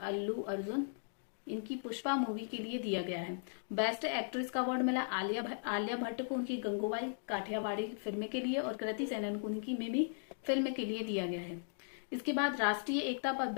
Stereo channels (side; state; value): right; silent; digital silence